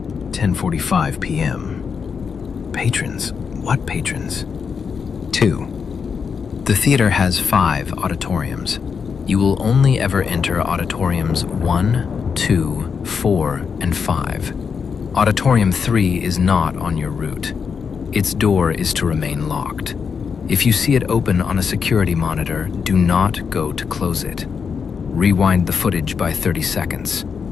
10:45 p.m. Patrons? What patrons? 2. The theater has 5 auditoriums. You will only ever enter auditoriums 1, 2, 4, and 5. Auditorium 3 is not on your route. Its door is to remain locked. If you see it open on a security monitor, do not go to close it. Rewind the footage by 30 seconds.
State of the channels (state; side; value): quieter; right; 6.1 dB